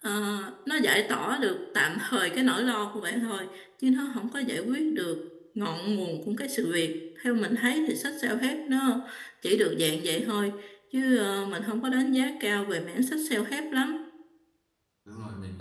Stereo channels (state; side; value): identical; both; correlation 1.00